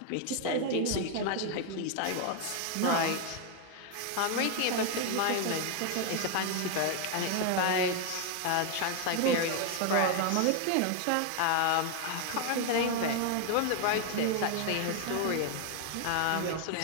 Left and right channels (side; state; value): both; different; correlation 0.00